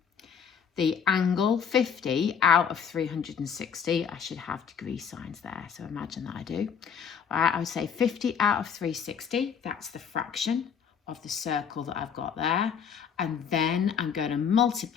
the angle 50 out of 360. I should have degree signs there, so imagine that I do. All right, I would say 50 out of 360, that's the fraction of the circle that I've got there. And then I'm going to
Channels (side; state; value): right; quieter; 7.3 dB